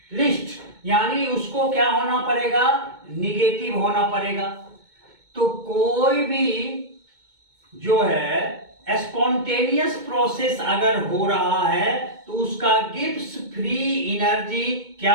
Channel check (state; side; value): late; left; 2.2 ms